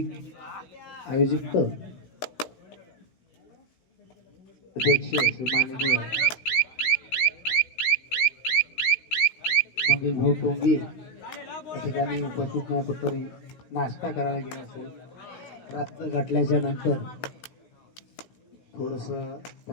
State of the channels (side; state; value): right; late; 16 ms